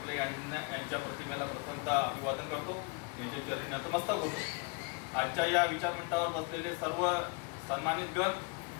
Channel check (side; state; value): right; quieter; 31.5 dB